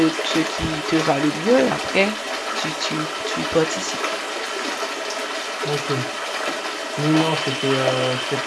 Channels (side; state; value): both; identical; correlation 1.00